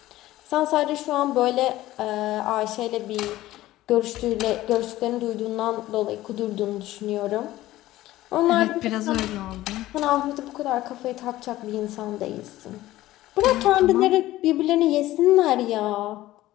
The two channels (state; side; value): quieter; right; 15.8 dB